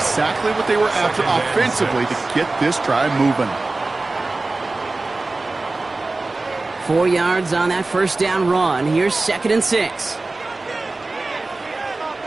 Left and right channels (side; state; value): left; quieter; 3.3 dB